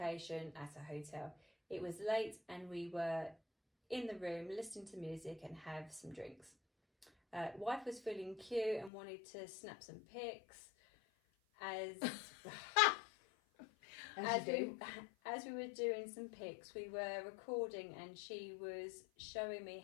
at a hotel. It was late and we were in the room listening to music and have some drinks. Wife was feeling cute and wanted to snap some pics. As we were doing some pics, we were recording and she was showing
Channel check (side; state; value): right; drops out; at 8.9 s